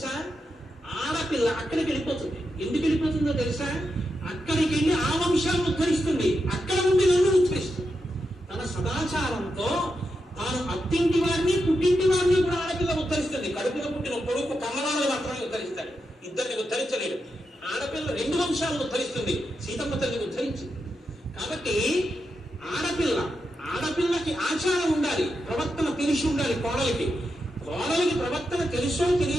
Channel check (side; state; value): both; normal; correlation 0.86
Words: ఆడపిల్ల అక్కడికి వెళ్ళిపోతుంది. ఎందుకు వెళ్ళిపోతుందో తెలుసా? అక్కడికి వెళ్ళి ఆ వంశాలను ఉద్ధరిస్తుంది. అక్కడ నుండి నన్ను ఉద్ధరిస్తుంది. తన సదాచారంతో తాను అత్తింటి వారిని పుట్టింటి వారిని కూడా ఆడపిల్ల ఉద్ధరిస్తుంది. కడుపులో పుట్టిన కొడుకు కమలాలను మాత్రమే ఉద్ధరిస్తాడు, ఇద్దరిని ఉద్ధరించలేడు. ఆడపిల్ల 2 వంశాలను ఉద్ధరిస్తుంది. సీతమ్మ తల్లిని ఉద్ధరించింది. కాబట్టి ఆడపిల్లకి ఆచారం ఉండాలి, ప్రవర్తన తెలిసి ఉండాలి. కోడలికి ప్రవర్తన తెలుసో